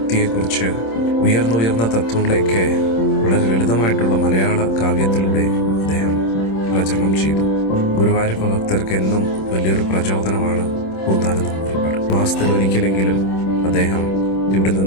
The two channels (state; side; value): late; right; 26 ms